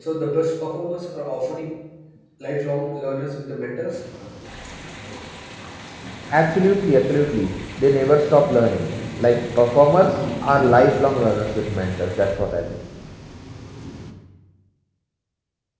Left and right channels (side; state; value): both; identical; correlation 1.00